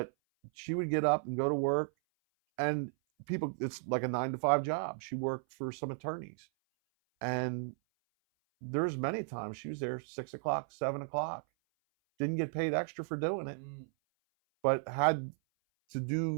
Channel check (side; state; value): left; silent; 55 dB below the other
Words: she would get up and go to work, and it's like a 9 to 5 job. She worked for some attorneys, and there's many times she was there 6 o'clock, 7 o'clock, didn't get paid extra for doing it, but had to